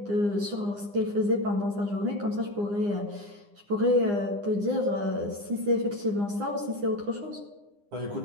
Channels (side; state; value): left; late; 9.8 ms